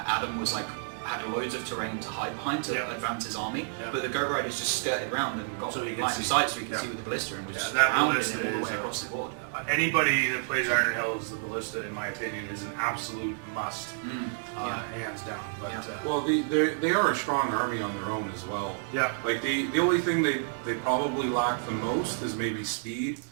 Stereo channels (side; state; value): left; silent; digital silence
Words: Adam was like had loads of terrain to hide behind to Yeah. advance his army, Yeah. but the Goat Riders just skirted around and got So he could line of see. sight so he could Yeah. see with the ballista and was Yeah, just that pounding ballista him all the is way a- across the board. Anybody that plays Iron Hills, the ballista, in my opinion, is an absolute must, hands down. But Yeah. Well, they are a strong army on their own as well. yeah, Like the only thing they probably lack the most is maybe speed,